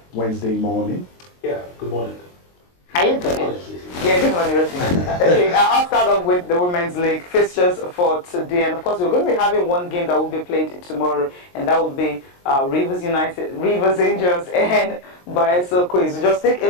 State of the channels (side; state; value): right; late; 22 ms